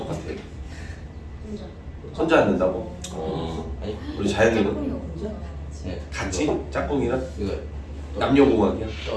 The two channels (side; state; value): both; identical; correlation 1.00